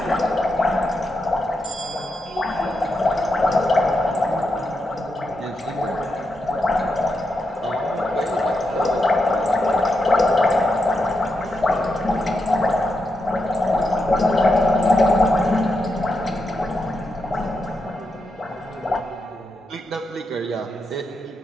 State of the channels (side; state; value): both; normal; correlation 0.85